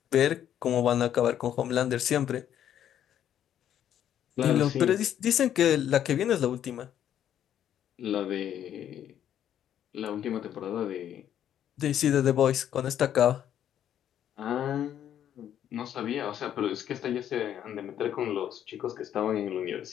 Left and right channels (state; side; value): quieter; right; 10.3 dB